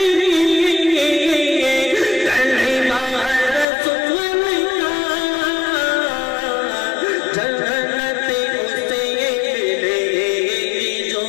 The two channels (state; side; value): drops out; right; at 3.7 s